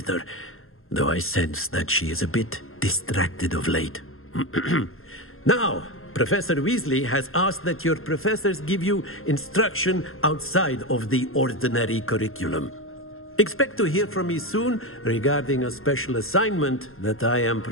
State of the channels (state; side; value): late; right; 0.61 ms